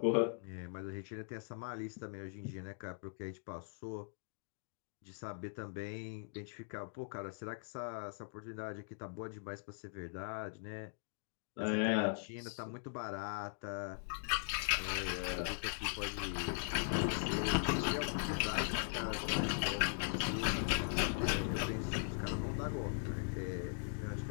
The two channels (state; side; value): silent; right; digital silence